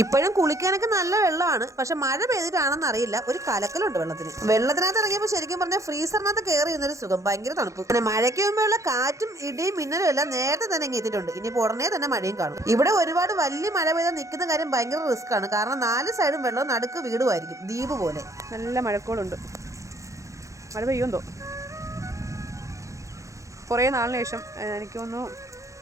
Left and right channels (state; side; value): late; left; 0.15 ms